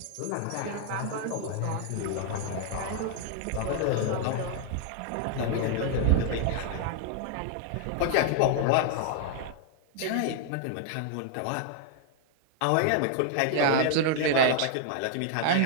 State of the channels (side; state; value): both; different; correlation 0.00